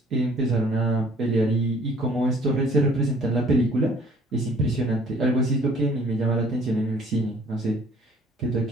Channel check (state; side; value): normal; both; correlation 0.55